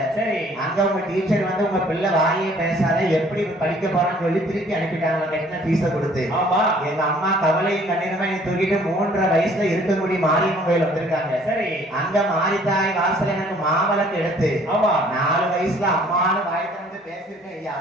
சரி. அங்க உங்க டீச்சர் வந்து உங்க பிள்ளை வாயே பேசாத எப்படி படிக்க போறான்னு சொல்லி திருப்பி அனுப்பிட்டாங்க கட்டின பீஸ கொடுத்து. ஆமா. எங்க அம்மா கவலையும் கண்ணீருமா என்னை தூக்கிட்டு 3.5 வயசுல இருக்கக்கூடிய மாரியம்மன் கோயில் வந்திருக்காங்க. சரி. அங்க மாரித்தாய் வாசல எனக்கு மாவளக்கு எடுத்து, ஆமா, 4 வயசுல அம்மானு வாய் திறந்து பேசிருக்கேன் ஐயா.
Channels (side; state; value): both; normal; correlation 0.57